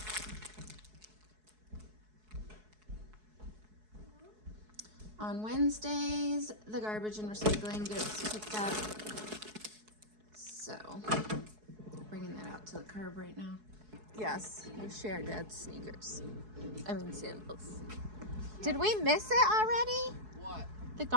On Wednesdays, the garbage and recycling gets picked up. So, bringing that out to the curb right now. Yes, we share Dad's sneakers. I mean sandals. Did we miss it already? What? The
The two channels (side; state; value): left; late; 4.7 ms